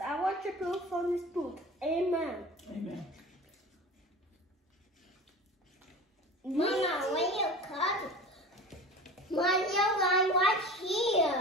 I want your proof from this book. Amen. Amen. Mama, when you come, Mario, right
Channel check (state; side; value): normal; both; correlation 0.35